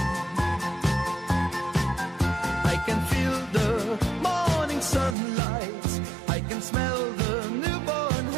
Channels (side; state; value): left; drops out; at 5.2 s